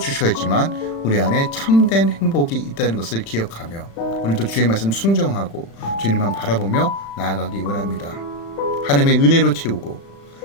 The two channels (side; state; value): right; late; 36 ms